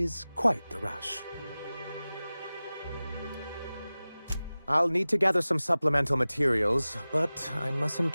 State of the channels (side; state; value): both; inverted; correlation -0.97